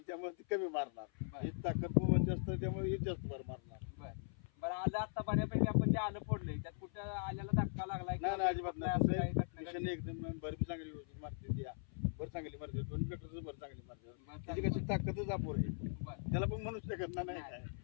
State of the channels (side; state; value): right; silent; 51 dB below the other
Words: त्यामुळे ती कमी मारणार, बर ही ताकद पण जास्त आहे त्यामुळे ही जास्त भर मारणार. बर बरं आलं आता बऱ्यापैकी आपण जे आलं फोडलंय त्यात कुठं आल्याला धक्का लागलाय नाही नाही अजिबात नाही. असं तसं काही घटना मिशन घडली? एकदम भर बी चांगली व्यवस्थित मारते ती, भर चांगली मारते, दोन्ही ट्रॅक्टरचं भर चांगली मारते. बरं, त्याची कशी चांगलं. ताकदच अपुर आहे, बरं त्याला पण म्हणू शकत नाही नाही, काय.